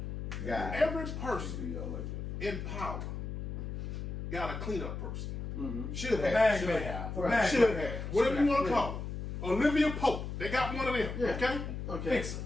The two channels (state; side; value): noise; left; hum, 6 dB below the sound